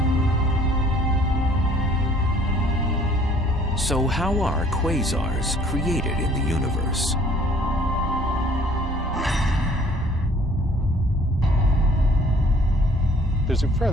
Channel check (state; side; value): normal; both; correlation 0.57